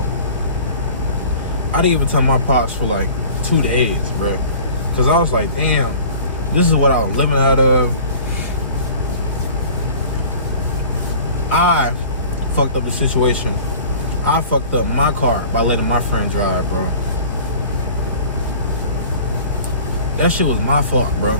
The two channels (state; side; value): inverted; both; correlation -0.44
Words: I didn't even tell my pops for like 2 days, bro, because I was like, damn, this is what I was living out of. I fucked up the situation. I fucked up my car by letting my friend drive, bro. That shit was my fault, bro.